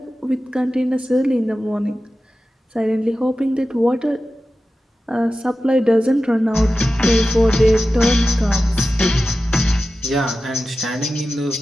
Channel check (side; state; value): both; normal; correlation 0.93